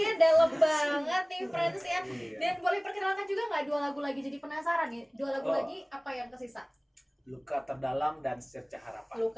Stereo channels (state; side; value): identical; both; correlation 1.00